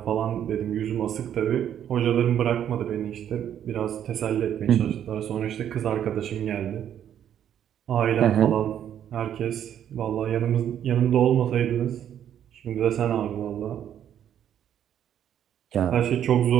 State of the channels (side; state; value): left; quieter; 9.9 dB